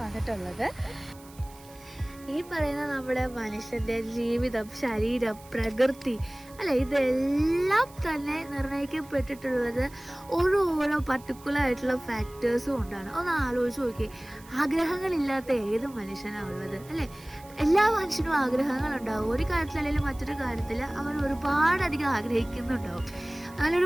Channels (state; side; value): noise; right; hiss, 23 dB below the sound